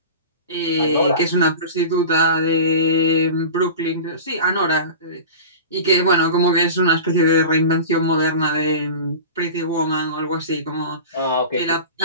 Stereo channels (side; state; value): both; inverted; correlation -0.33